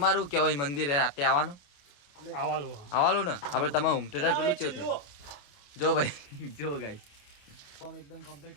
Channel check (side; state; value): right; late; 28 ms